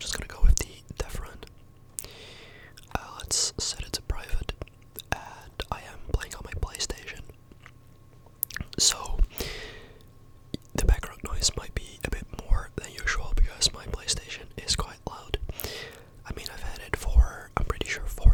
gonna go with the death run. Let's set it to private, and I am playing on my PlayStation. So the background noise might be a bit more than usual because my PlayStation is quite loud. I mean, I've had it for, I'm pretty sure, 4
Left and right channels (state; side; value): identical; both; correlation 1.00